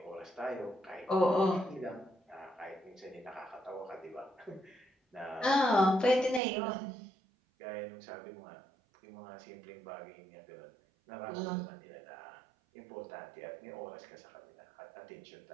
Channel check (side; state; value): left; drops out; at 6.4 s